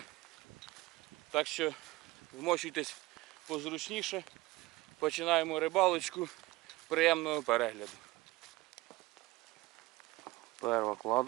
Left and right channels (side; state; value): left; quieter; 19.6 dB